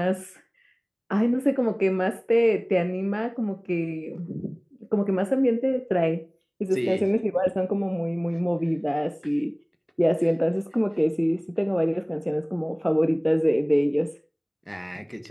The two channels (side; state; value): both; identical; correlation 1.00